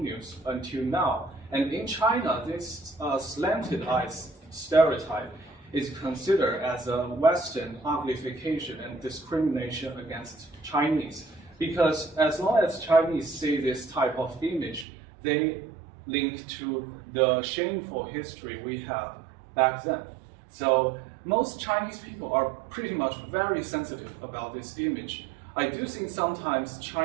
until now. And in China, this slanted eyes stereotype is considered as a Western uglification and discrimination against Chinese. Because as long as Chinese see this type of image, they link to the shameful history we have back then. So most Chinese people are pretty much very sensitive about this image. I do think sometimes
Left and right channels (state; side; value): drops out; left; at 14.9 s